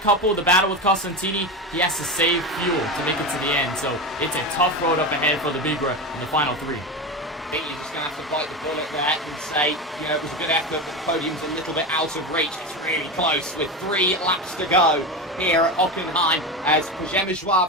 couple, the battle with Costantini, he has to save fuel to make it to the end. So it's a tough road up ahead for Lebigra in the final 3. You're just going to have to bite the bullet there and say, you know, it was a good effort, but the podium's a little bit out of reach. It's really close with 3 laps to go here at Hockenheim as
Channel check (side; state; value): both; normal; correlation 0.20